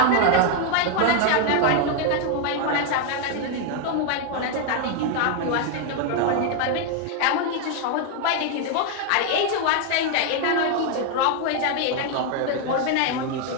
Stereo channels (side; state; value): both; different; correlation 0.00